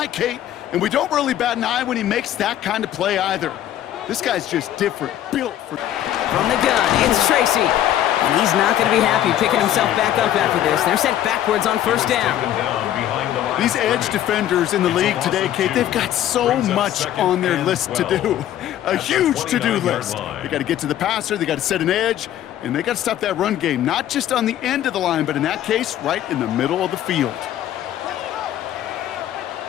Kate. And we don't really bat an eye when he makes that kind of play either. This guy's just different, built for... From the gun, it's Tracy. And he's not going to be happy picking himself back up after this. They're sent backwards on first down. These edge defenders in the league today, Kate, they've got so much on their list to do. A huge to-do list. They got to get to the passer, they got to set an edge, and they got to stop that run game, not just on the end of the line, but in that case, right in the middle of the field.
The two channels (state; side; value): quieter; right; 11.9 dB